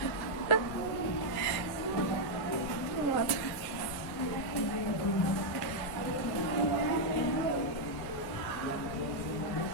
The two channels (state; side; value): late; right; 1.6 ms